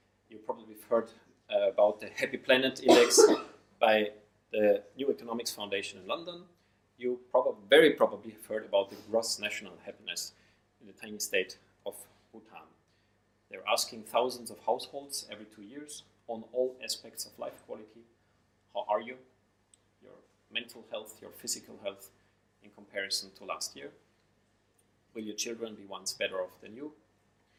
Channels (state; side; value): identical; both; correlation 1.00